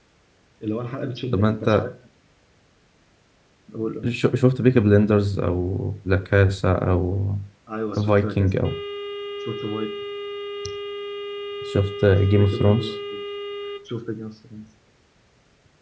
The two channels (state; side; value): identical; both; correlation 1.00